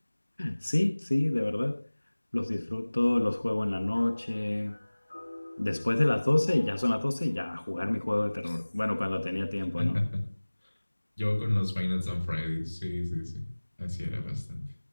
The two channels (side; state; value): both; inverted; correlation -1.00